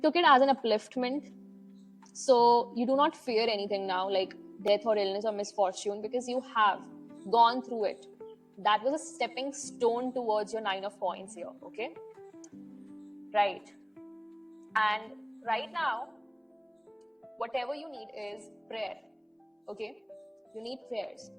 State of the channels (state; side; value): identical; both; correlation 1.00